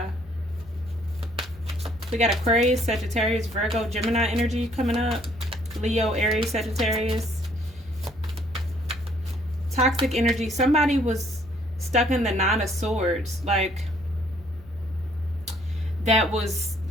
We got Aquarius, Sagittarius, Virgo, Gemini energy coming up. Leo, Aries, Sagittarius. Toxic energy. Somebody was stuck in the Nine of Swords. Like, that was,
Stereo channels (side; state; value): both; normal; correlation 0.63